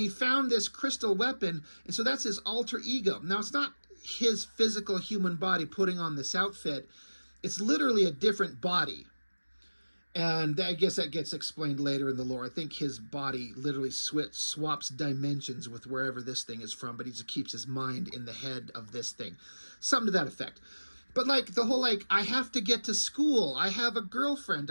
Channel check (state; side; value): inverted; both; correlation -1.00